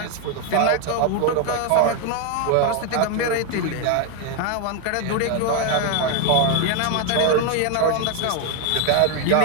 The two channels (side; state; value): both; different; correlation 0.01